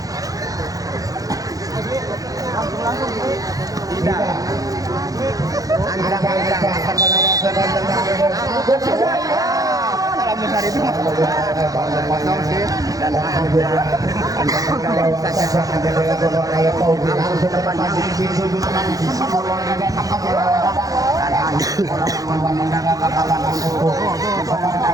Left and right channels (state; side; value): late; left; 0.17 ms